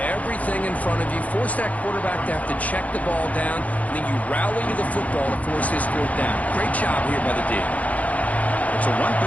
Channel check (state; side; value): late; right; 0.070 ms